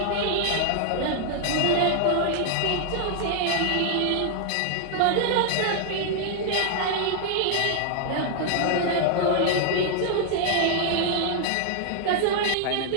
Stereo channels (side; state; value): both; different; correlation -0.01